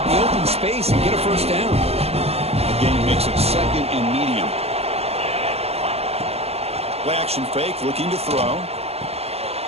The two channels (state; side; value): late; left; 0.29 ms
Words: in the open space and get a first down. The game makes it second and medium. Play action fake, looking to throw.